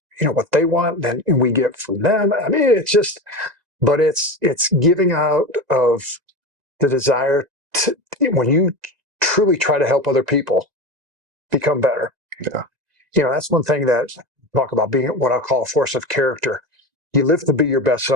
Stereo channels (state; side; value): late; left; 1.9 ms